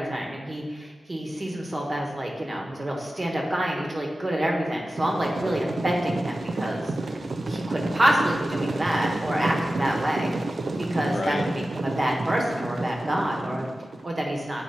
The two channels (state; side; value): normal; both; correlation 0.94